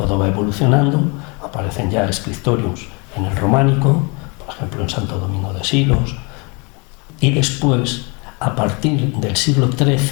va evolucionando, aparecen ya scriptoriums en el románico, por ejemplo en Santo Domingo de Silos, y después, a partir del siglo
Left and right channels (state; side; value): quieter; right; 31.0 dB